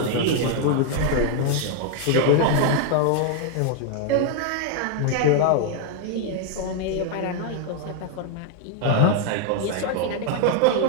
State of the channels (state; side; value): different; both; correlation 0.00